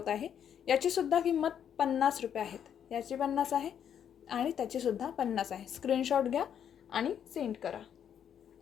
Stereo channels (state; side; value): quieter; right; 8.9 dB